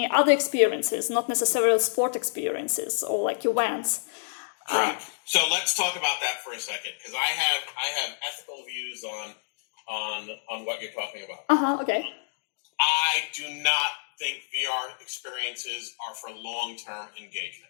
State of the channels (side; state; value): right; silent; digital silence